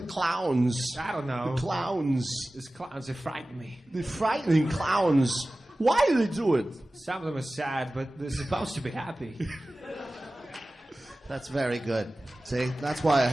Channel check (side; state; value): both; normal; correlation 0.97